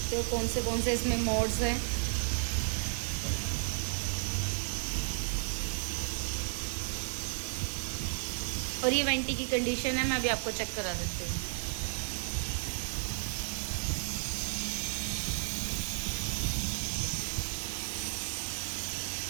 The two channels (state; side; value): silent; left; 55 dB below the other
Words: हो कौन से इसमें मोड्स हैं। और ये वेंटी की कंडीशन है, मैं अभी आपको चेक करा देती हूँ।